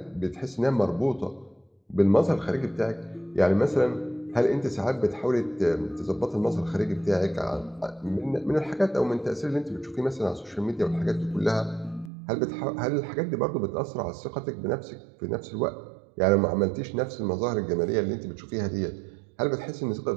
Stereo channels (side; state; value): left; drops out; at 12.1 s